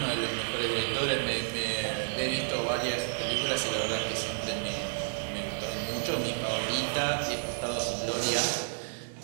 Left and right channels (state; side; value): silent; left; digital silence